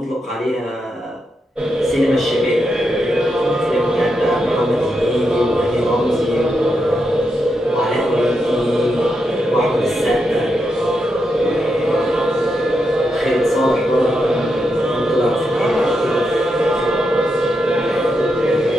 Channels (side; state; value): both; normal; correlation 0.84